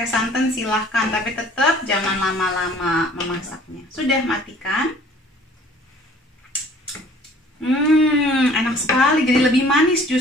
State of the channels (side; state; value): both; normal; correlation 0.53